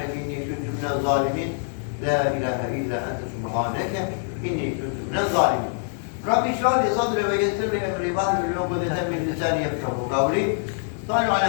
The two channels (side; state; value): right; silent; 62 dB below the other